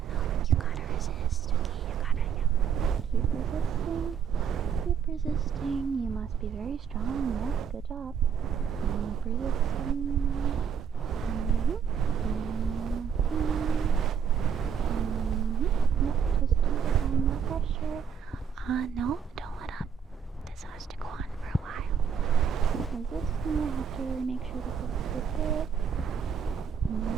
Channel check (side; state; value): left; quieter; 7.3 dB